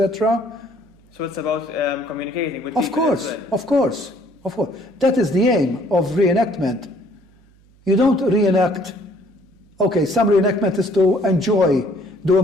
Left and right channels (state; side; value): noise; right; hum, 30 dB below the sound